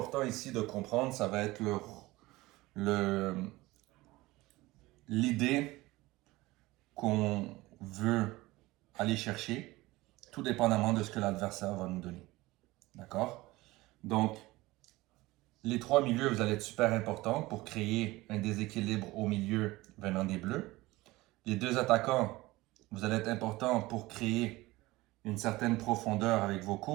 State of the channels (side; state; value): left; quieter; 19.7 dB